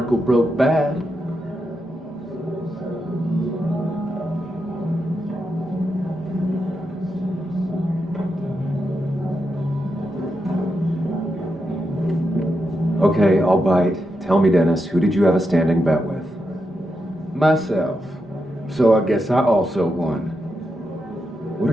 broke bad. Okay, I'll bite. Tell me, Dennis, who did you have a standing bet with? Myself. So I guess I also won. What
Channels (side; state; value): both; normal; correlation 0.85